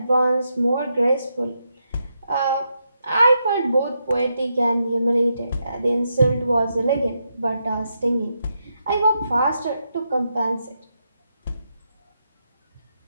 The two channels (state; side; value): inverted; both; correlation -0.83